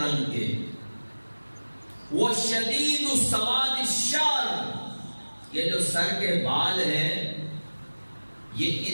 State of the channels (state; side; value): inverted; both; correlation -1.00